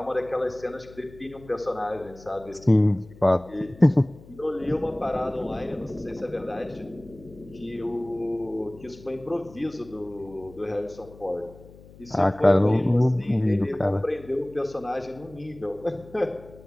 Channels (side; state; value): left; noise; hum, 21 dB below the sound